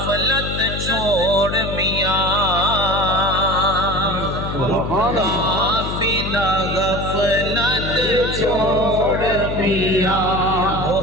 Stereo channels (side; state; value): left; noise; hum, 5 dB below the sound